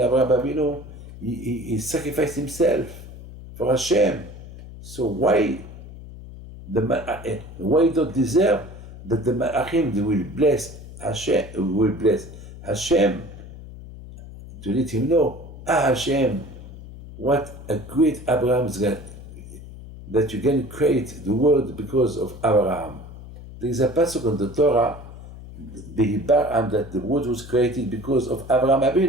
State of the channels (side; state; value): left; noise; hum, 15 dB below the sound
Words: Abinu. He sacrificed himself for Hashem. So why don't deserve that the Malachim will bless Hashem to let him know, Hashem, what a great Abraham is going, that you can create the world because of Abraham. There is a passage on the Torah, the Hibaram, that the world was created because of Abraham